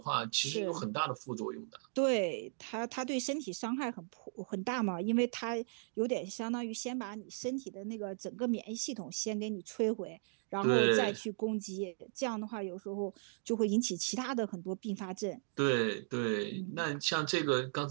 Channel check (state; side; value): silent; left; digital silence